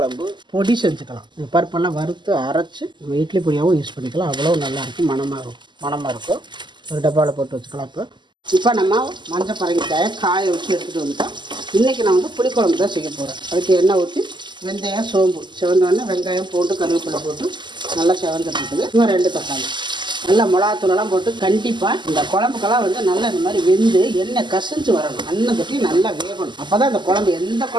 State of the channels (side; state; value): left; late; 0.22 ms